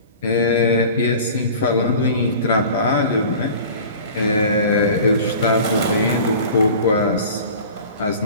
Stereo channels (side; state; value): both; inverted; correlation -0.41